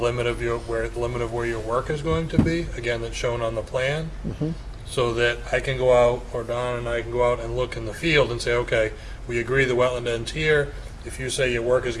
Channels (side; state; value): both; identical; correlation 1.00